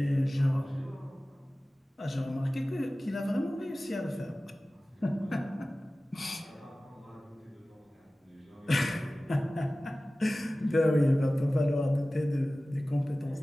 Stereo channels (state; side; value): normal; both; correlation 0.97